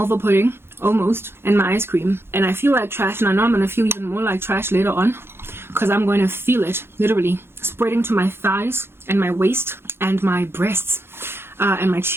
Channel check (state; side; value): late; left; 0.11 ms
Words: pudding, almost, and my ice cream. And I feel like trash, and I know I'm going to feel even more like trash later on, because I'm going to feel it, literally, spreading to my thighs and my waist and my breasts and my